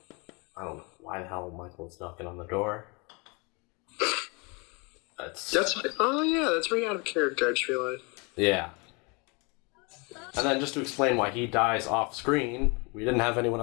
don't know why the hell Michael's knocking on the door. That's very out of character, I just realized. Yeah. And then just to explain why he dies off screen, we didn't have anyone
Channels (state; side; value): quieter; right; 30.2 dB